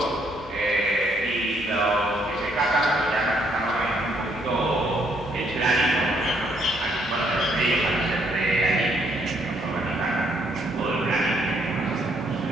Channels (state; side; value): normal; both; correlation 0.70